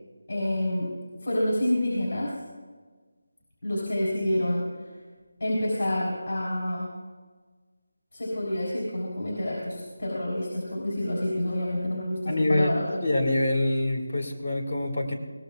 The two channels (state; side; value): inverted; both; correlation -0.94